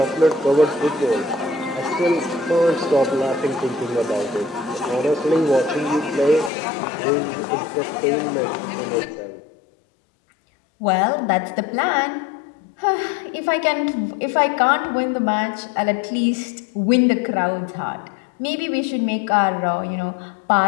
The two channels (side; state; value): right; drops out; at 6.5 s